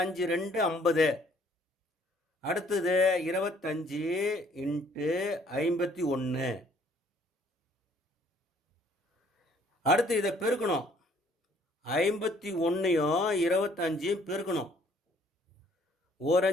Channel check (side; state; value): both; normal; correlation 0.61